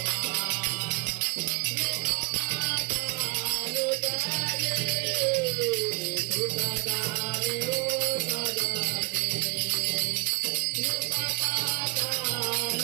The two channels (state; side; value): quieter; left; 26.5 dB